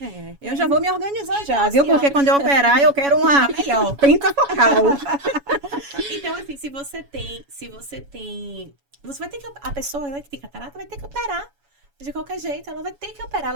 Eu já vou me organizar já, Então, viu? assim, ó. Porque quando eu operar, eu quero uma Tá melhor. pentafocal. Então, assim, se você tem. Você vai ter que. A pessoa, né, que tem catarata vai ter que operar. De qualquer jeito, ela vai ter que operar,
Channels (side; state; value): left; late; 7.1 ms